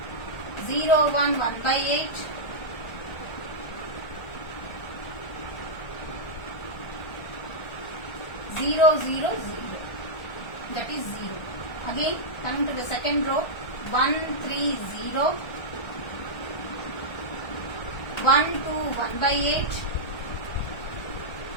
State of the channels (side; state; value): right; late; 1.3 ms